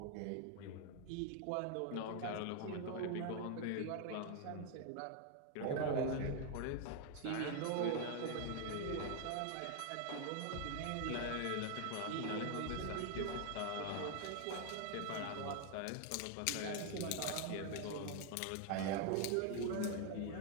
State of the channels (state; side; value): different; both; correlation 0.00